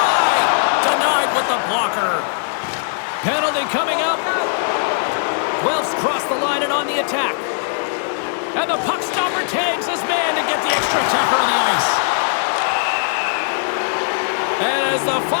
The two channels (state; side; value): silent; right; digital silence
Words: Denied with the blocker. Penalty coming up. Guelph's crossed the line and on the attack. And the puck stopper tags his man to get the extra attacker on the ice. And as the